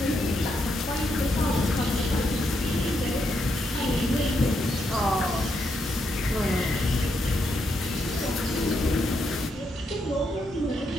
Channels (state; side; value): normal; both; correlation 0.80